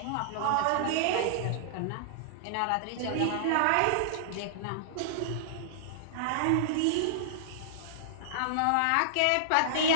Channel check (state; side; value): different; both; correlation -0.02